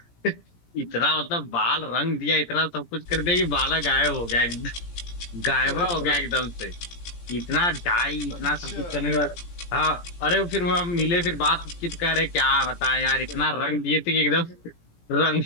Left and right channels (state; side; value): late; right; 17 ms